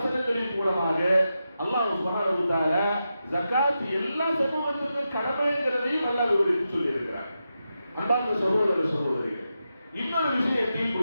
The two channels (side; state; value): both; inverted; correlation -0.88